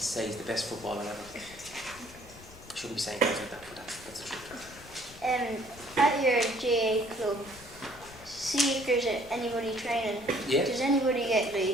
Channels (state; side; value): noise; left; rumble, 19 dB below the sound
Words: he's the best footballer ever. I shouldn't be saying things like that, but that's the truth. At your GAA club, see if there's anybody training. Yeah. Does anybody get